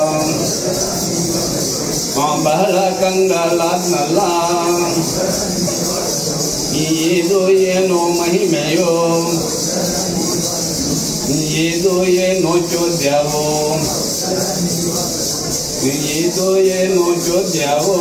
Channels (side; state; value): both; identical; correlation 1.00